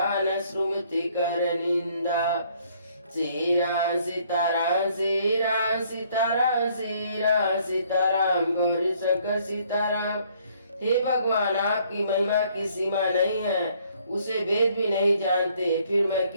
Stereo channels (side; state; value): both; inverted; correlation -0.64